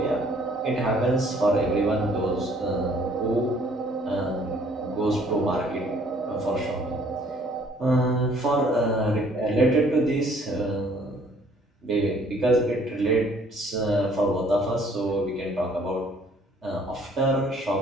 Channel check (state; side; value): normal; both; correlation 0.60